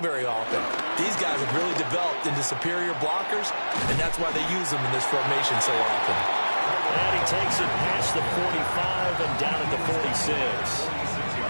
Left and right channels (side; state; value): both; inverted; correlation -1.00